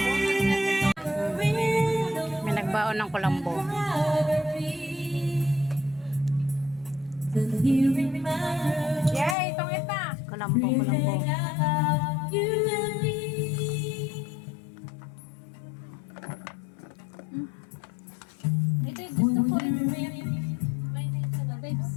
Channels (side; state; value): right; drops out; at 9.3 s